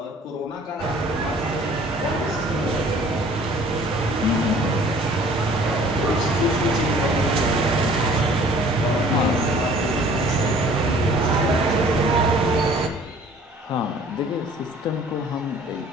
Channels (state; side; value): normal; both; correlation 0.52